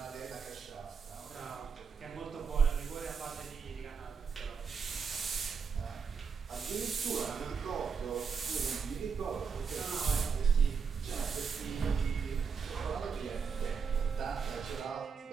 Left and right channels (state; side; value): quieter; left; 5.9 dB